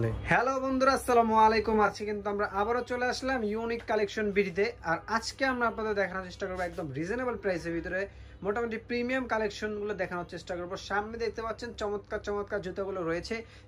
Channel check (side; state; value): both; identical; correlation 1.00